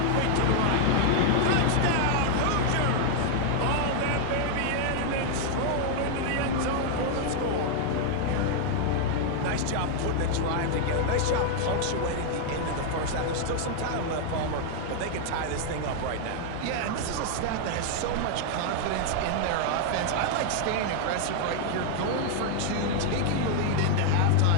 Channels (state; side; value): different; both; correlation 0.00